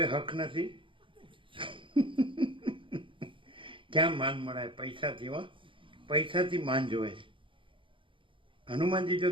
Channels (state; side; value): late; left; 0.25 ms